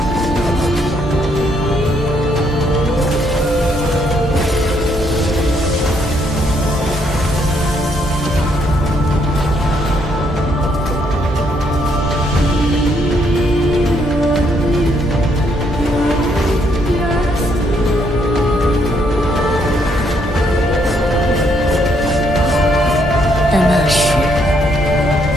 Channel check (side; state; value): both; normal; correlation 0.72